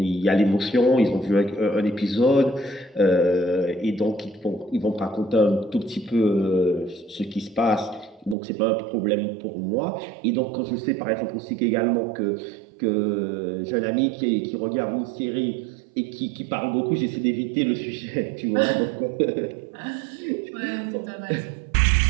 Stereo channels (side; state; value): left; drops out; at 8.3 s